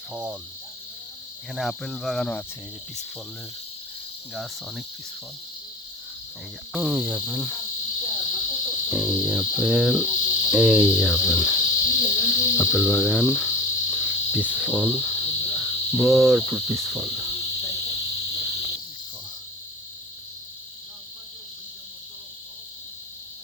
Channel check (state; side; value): normal; both; correlation 0.33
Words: ফল। এখানে আপেল বাগানও আছে। এই যে পিস ফলের গাছ, অনেক পিস ফল। এই যে আপেল, এই যে আপেল, এই যে আপেল, আপেল বাগান, পিস ফল, ভরপুর পিস ফল।